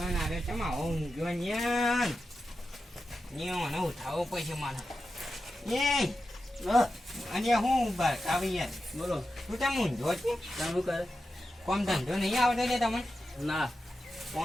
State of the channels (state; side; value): normal; both; correlation 0.91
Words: આજે છે આવો ઊંઘ્યો ન્યાન મને ઉઠાવવો પડશે મારે એ અને હું આવી યાર બોલો તું તેમ ઊંધો છે શું કરે કોમ ધંધો નહીં આવતો ને તમને ના